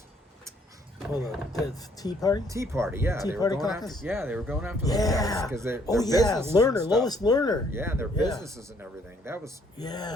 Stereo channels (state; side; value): normal; both; correlation 0.65